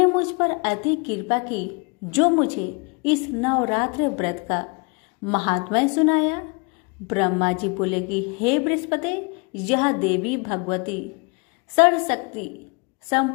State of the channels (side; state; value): right; quieter; 32.3 dB